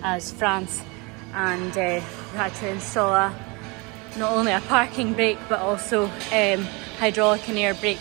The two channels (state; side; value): quieter; left; 27.9 dB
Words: France, and we had to install not only a parking brake but also hydraulic and air